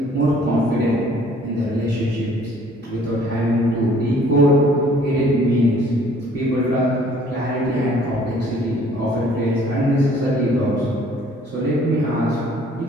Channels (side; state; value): both; normal; correlation 0.57